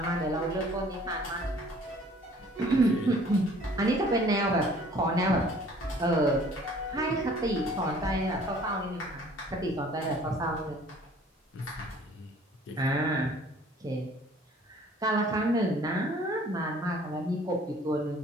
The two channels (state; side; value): normal; both; correlation 0.54